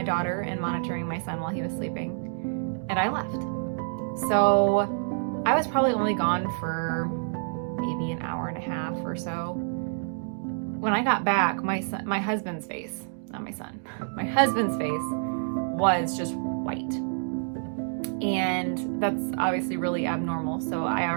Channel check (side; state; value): left; silent; digital silence